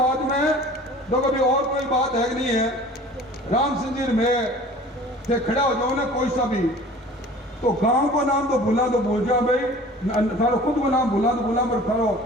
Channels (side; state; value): both; normal; correlation 0.45